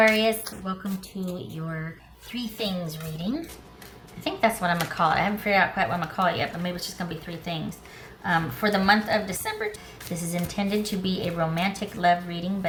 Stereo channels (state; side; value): identical; both; correlation 1.00